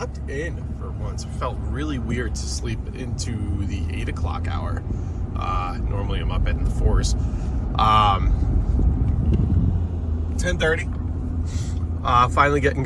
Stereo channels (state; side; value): identical; both; correlation 1.00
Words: in for once. It felt really weird to sleep into the 8 o'clock hour. Normally I'm up in the 4s. 10:30. Finally getting